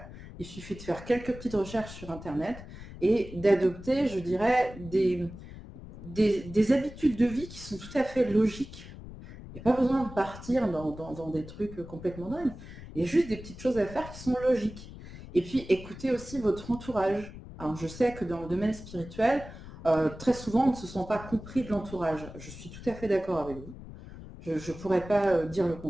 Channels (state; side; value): noise; left; rumble, 14 dB below the sound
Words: Il suffit de faire quelques petites recherches sur Internet et d'adopter, je dirais, des habitudes de vie qui sont tout à fait logiques. Il n'y a pas besoin de partir dans des trucs complètement dingues. Il y a juste des petites choses à faire qui sont logiques. Et puis, écoutez aussi votre entourage. Alors, je sais que dans le domaine spirituel, très souvent, on ne se sent pas compris de l'entourage. Je suis tout à fait d'accord avec vous. Je ne pourrais pas dire le